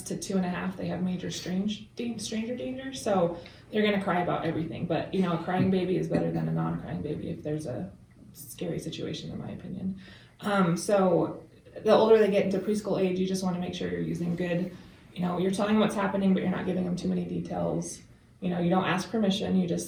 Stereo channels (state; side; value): identical; both; correlation 1.00